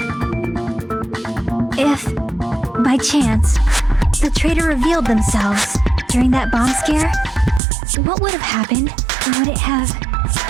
If, by chance, the traitor revealed themselves during that bomb scare, what would have happened? Would it have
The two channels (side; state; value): left; drops out; at 7.6 s